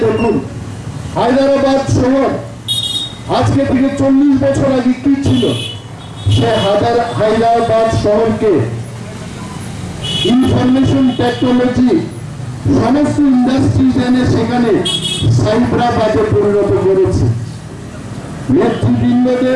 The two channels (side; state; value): both; identical; correlation 1.00